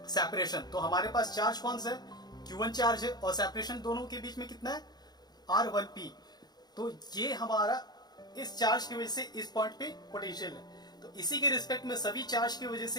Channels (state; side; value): late; right; 0.20 ms